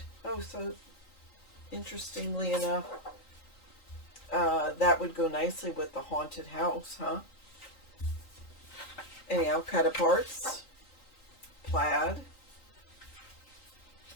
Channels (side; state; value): right; late; 3.9 ms